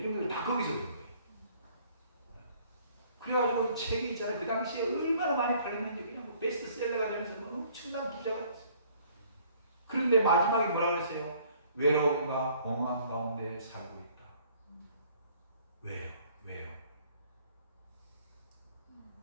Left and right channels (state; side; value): inverted; both; correlation -0.58